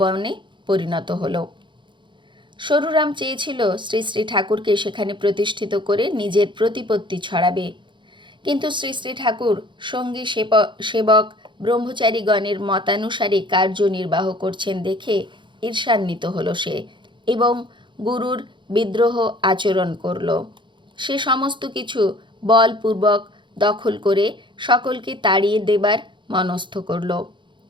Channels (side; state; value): left; late; 0.23 ms